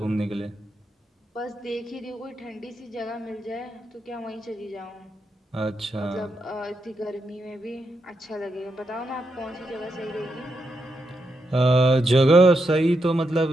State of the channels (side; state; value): both; normal; correlation 0.83